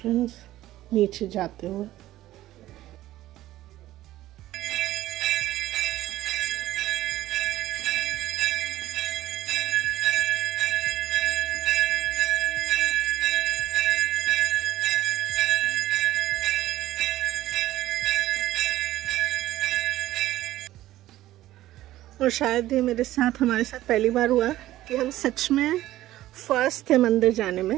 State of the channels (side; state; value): left; quieter; 14.9 dB